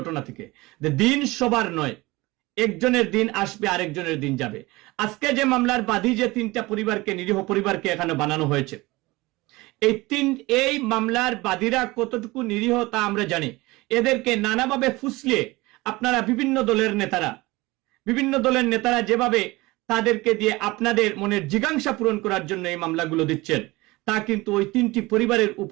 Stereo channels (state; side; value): quieter; left; 21.3 dB